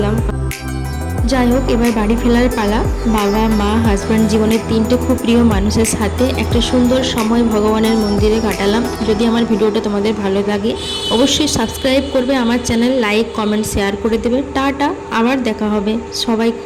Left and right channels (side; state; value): both; identical; correlation 1.00